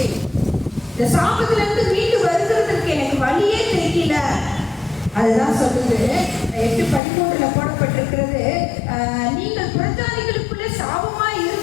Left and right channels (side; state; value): right; drops out; at 7.0 s